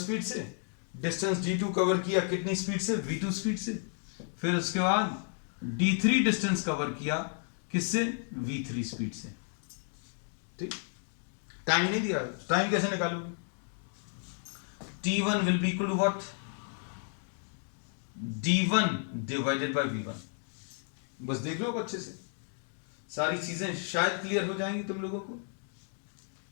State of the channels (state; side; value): silent; right; 56 dB below the other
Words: से, डिस्टेंस d2 कवर किया कितनी स्पीड से, v2 स्पीड से, फिर उसके बाद d3 डिस्टेंस कवर किया किससे, v3 स्पीड से। ठीक, टाइम नहीं दिया, टाइम कैसे निकालोगे, t1 will be equal to what, d1 divided by v1। बस देख लो अच्छे से, सारी चीजें शायद क्लियर हो जाएंगी तुम लोगों को।